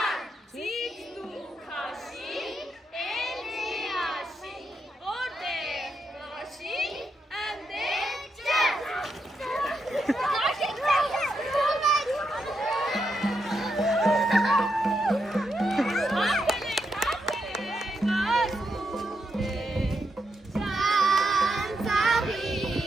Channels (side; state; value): both; normal; correlation 0.82